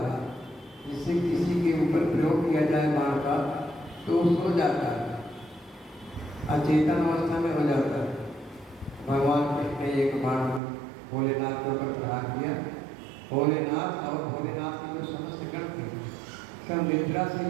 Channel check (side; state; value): left; drops out; at 10.6 s